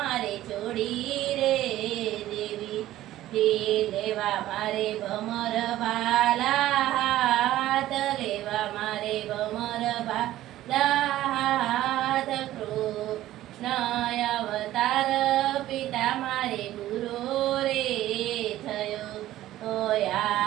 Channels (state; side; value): quieter; left; 14.4 dB